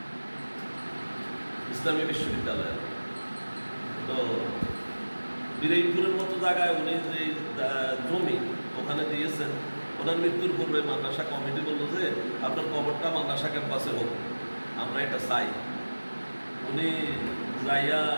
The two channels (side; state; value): both; inverted; correlation -1.00